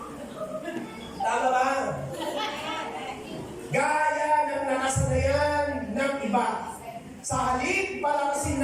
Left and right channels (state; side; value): identical; both; correlation 1.00